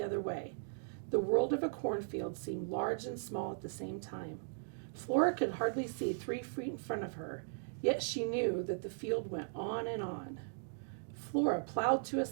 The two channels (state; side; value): silent; left; digital silence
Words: other way. The world of a cornfield seemed large and small at the same time. Flora could hardly see 3 feet in front of her, yet she knew that the field went on and on. Flora plowed to a